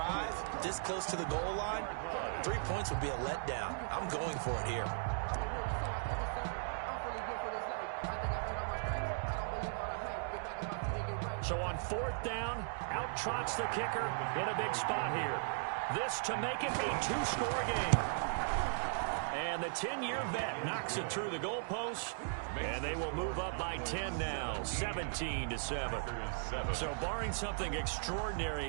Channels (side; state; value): left; silent; digital silence